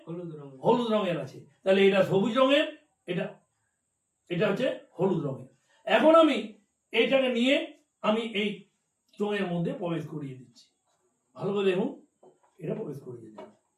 হলুদ রঙ। হলুদ রঙের আছে। তাহলে এটা সবুজ রঙের, এটা এটা হচ্ছে হলুদ রঙের। এখন আমি এইটাকে নিয়ে আমি এই চোঙের মধ্যে প্রবেশ করিয়ে দিচ্ছি। ভালো করে দেখুন, এটা প্রবেশ করিয়ে দিলাম।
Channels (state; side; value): identical; both; correlation 1.00